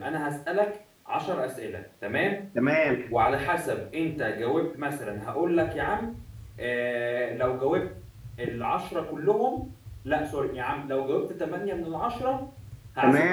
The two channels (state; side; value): identical; both; correlation 1.00